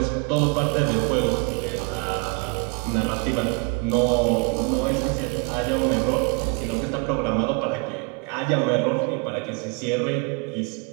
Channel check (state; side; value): quieter; left; 32.1 dB